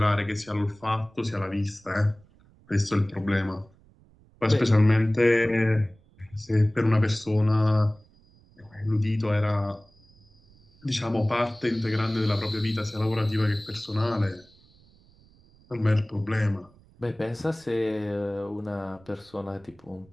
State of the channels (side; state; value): right; noise; rumble, 29 dB below the sound